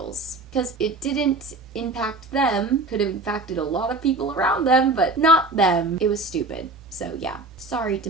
Because it didn't impact them. Could have impacted a lot of people around them, but not them. It was stupid. So yeah. Sorry,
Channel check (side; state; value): left; quieter; 3.2 dB